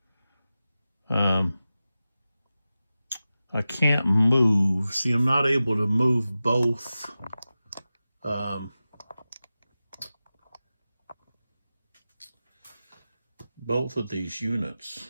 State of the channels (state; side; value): inverted; both; correlation -0.94